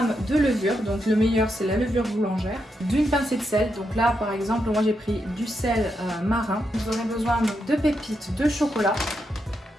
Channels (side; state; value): both; normal; correlation 0.83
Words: de levure, donc le meilleur c'est la levure boulangère, d'une pincée de sel, donc là par exemple moi j'ai pris du sel marin. Vous aurez besoin donc, de pépites de chocolat